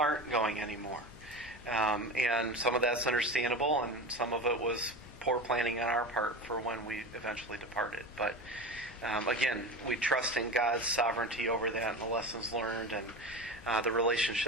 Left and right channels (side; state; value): both; normal; correlation 0.27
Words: going anymore. And some of that's understandable, and some of it was poor planning on our part for when we eventually departed. But again, we trust in God's sovereignty over that and the lessons learned and the